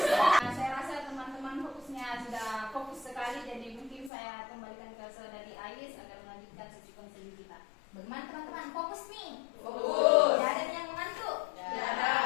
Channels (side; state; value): right; drops out; at 4.1 s